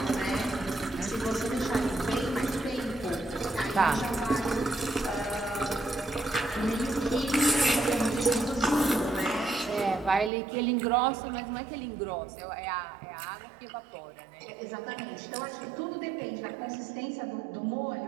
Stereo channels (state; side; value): drops out; left; at 10.3 s